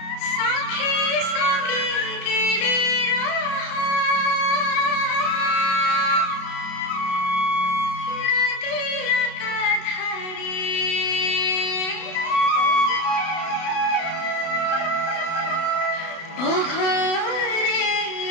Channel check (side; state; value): right; late; 32 ms